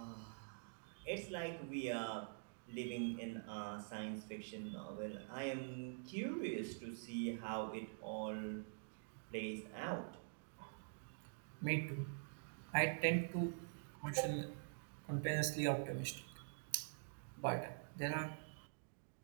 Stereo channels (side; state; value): left; silent; digital silence